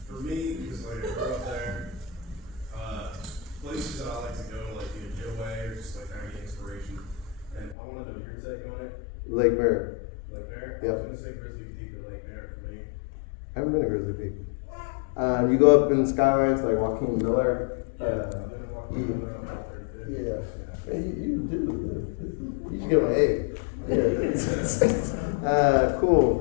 for me, because like I grew up there, places that I like to go to, like either get away or just like kind of get inspiration. And I want to know your take on it. Lake Merritt. Lake Merritt. Yep. I was gonna say Grizzly Peak or Lake Merritt for me. I haven't been to Grizzly Peak. You go up in skylines like Joaquin Miller. I've been walking around like Yeah. You do. You should get an A. Yeah.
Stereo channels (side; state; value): right; drops out; at 7.8 s